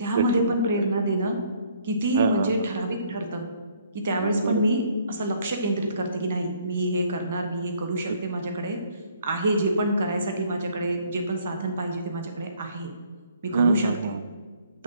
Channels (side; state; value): both; inverted; correlation -0.62